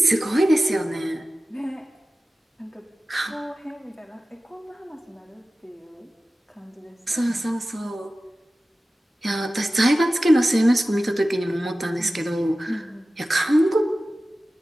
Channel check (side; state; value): both; normal; correlation 0.96